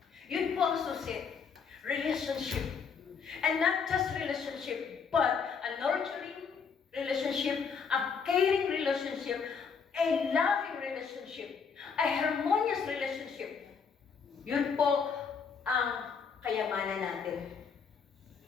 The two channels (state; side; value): quieter; right; 6.0 dB